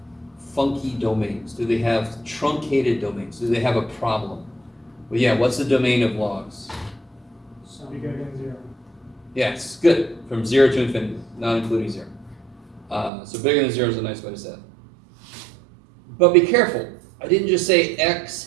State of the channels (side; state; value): left; drops out; at 13.1 s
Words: funky domains? Do they have truncated domains? Do they have a problem? Well, yeah, what's the domain of logs? Bigger than 0. Yes, good. From 0 to infinity, not including 0. So bigger than 0 is a nice way to say it. But be careful. I didn't just say x